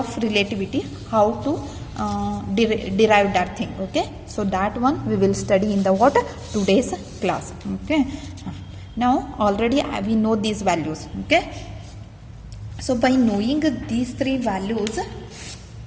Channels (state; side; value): identical; both; correlation 1.00